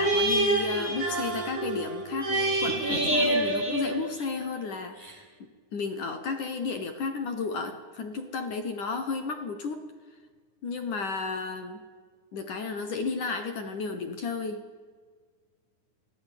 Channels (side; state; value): right; late; 10 ms